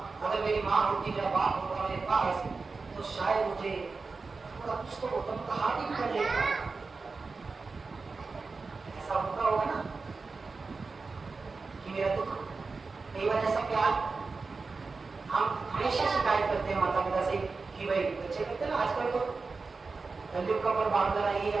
अगर मेरी माँ होती, मेरा बाप होता मेरे पास, तो शायद मुझे थोड़ा कुछ तो होता, तो हाथ ही कर लेता। ऐसा होता होगा ना कि मेरा दुख, कई बार ऐसा प्यार हम हमेशा शिकायत करते हैं माता पिता से कि भाई बच्चे करते हैं ना आजकल, तो तंदुरुस्त का पर बांध रहा है,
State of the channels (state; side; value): quieter; left; 4.2 dB